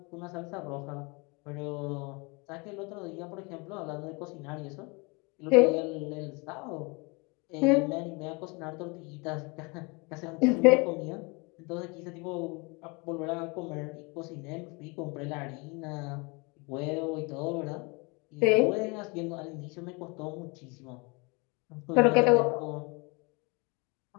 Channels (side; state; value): right; quieter; 29.2 dB